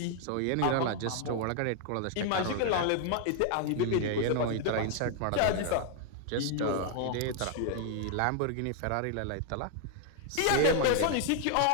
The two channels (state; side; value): different; both; correlation 0.00